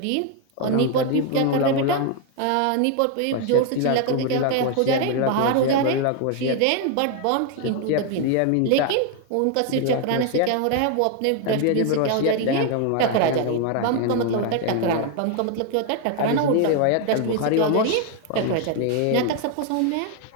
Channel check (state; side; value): different; both; correlation 0.01